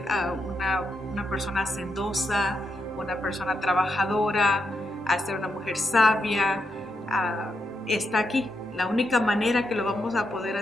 una persona hacendosa, una persona trabajadora, a ser una mujer sabia, está aquí. La única manera que lo vamos a poder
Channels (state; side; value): normal; both; correlation 0.83